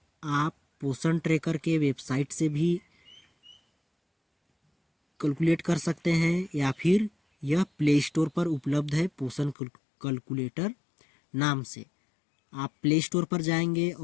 आप पोषण ट्रैकर के वेबसाइट से भी कैलकुलेट कर सकते हैं या फिर यह प्ले स्टोर पर उपलब्ध है पोषण कैलकुलेटर नाम से। आप प्ले स्टोर पर जाएंगे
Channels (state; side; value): drops out; right; at 9.6 s